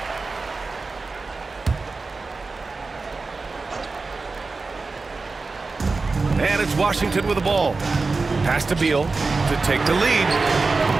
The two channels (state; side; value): quieter; left; 4.0 dB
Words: And it's Washington with the ball. Pass to Beal to take the lead.